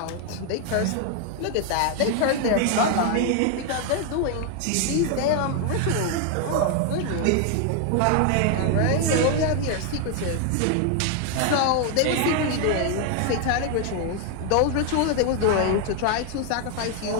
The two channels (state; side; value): different; both; correlation 0.00